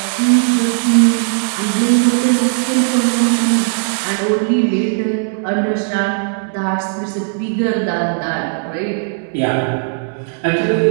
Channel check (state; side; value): silent; left; 68 dB below the other